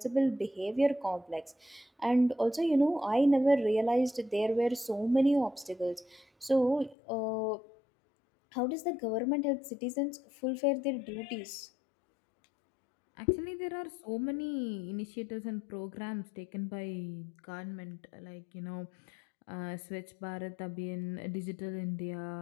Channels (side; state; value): right; drops out; at 7.0 s